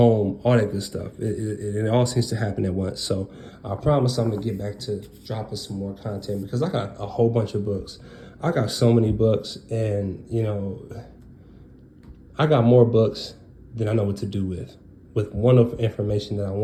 all that good stuff. It all seems to happen at once. So I promise I'm gonna get back to dropping some more content because I got a whole bunch of books. I got so many books, and I got more books than I know what to do with wonderful information that I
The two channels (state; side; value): identical; both; correlation 1.00